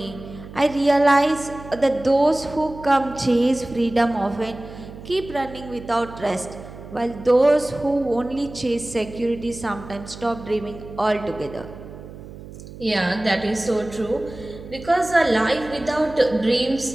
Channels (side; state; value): right; noise; hum, 15 dB below the sound